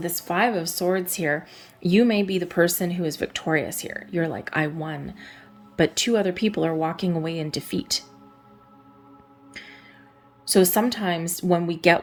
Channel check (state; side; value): identical; both; correlation 1.00